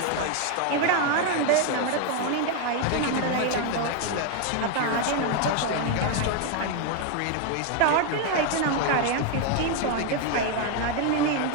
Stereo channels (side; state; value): both; different; correlation 0.01